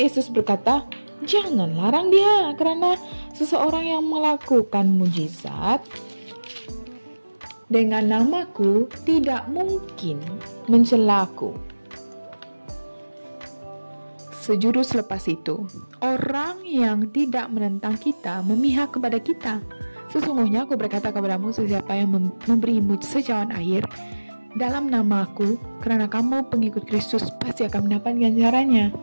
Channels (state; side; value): inverted; both; correlation -1.00